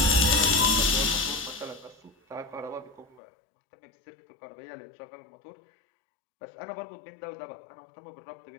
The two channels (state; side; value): drops out; right; at 3.2 s